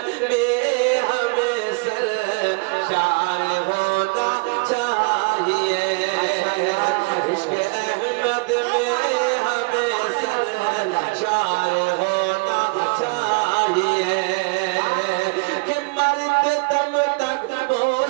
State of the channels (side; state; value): left; quieter; 29.8 dB